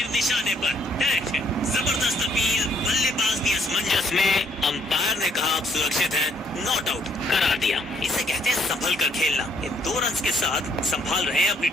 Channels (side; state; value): both; normal; correlation 0.68